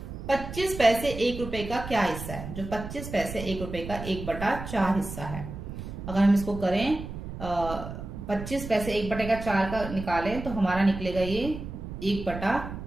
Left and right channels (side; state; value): right; noise; rumble, 9 dB below the sound